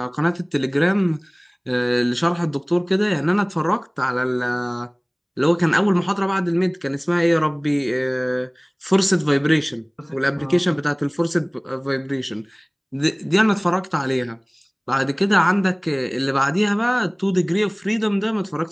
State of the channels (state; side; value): identical; both; correlation 1.00